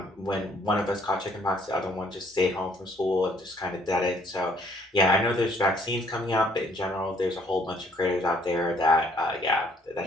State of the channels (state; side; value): normal; both; correlation 0.63